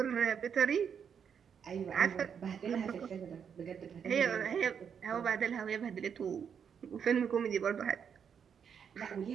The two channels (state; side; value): quieter; left; 7.4 dB